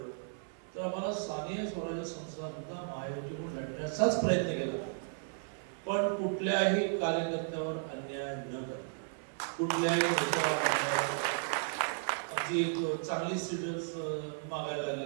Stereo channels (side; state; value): left; silent; 55 dB below the other